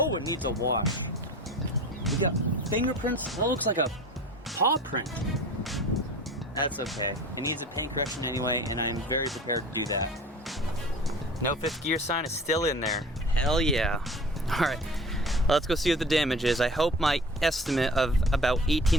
it needs a wash. We got fingerprints. That looks like a paw print. That's okay. It needs a paint correction anyway, and I'm very prepared to do that. No fifth gear sign is still in there. Hell yeah. All right, let's go see what the damage is. I hope my estimate of about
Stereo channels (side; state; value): both; normal; correlation 0.40